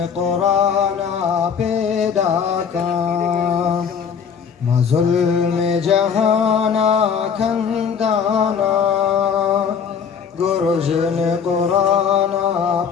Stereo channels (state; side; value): quieter; right; 6.8 dB